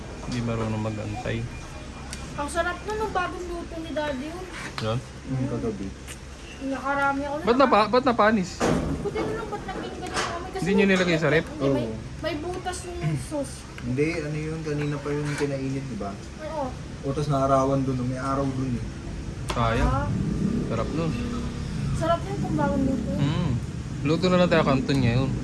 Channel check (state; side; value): identical; both; correlation 1.00